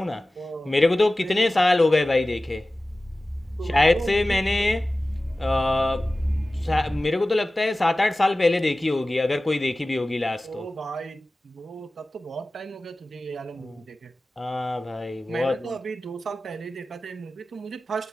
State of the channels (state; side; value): normal; both; correlation 0.96